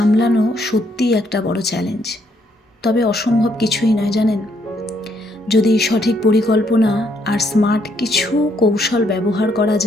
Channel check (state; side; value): normal; both; correlation 0.72